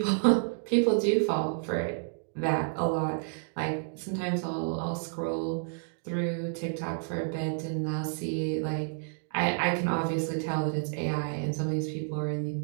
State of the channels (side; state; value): left; silent; digital silence